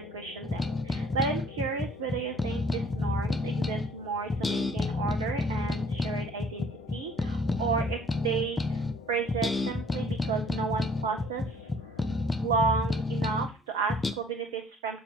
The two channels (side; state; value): both; normal; correlation 0.56